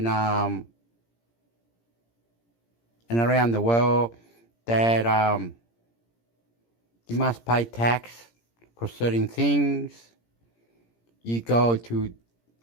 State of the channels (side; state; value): right; late; 17 ms